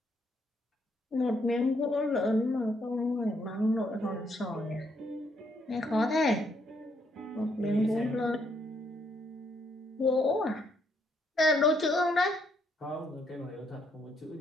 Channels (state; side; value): normal; both; correlation 0.73